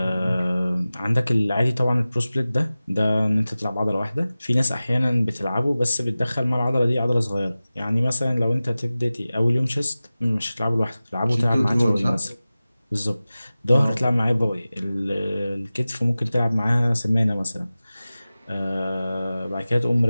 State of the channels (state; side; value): inverted; both; correlation -0.97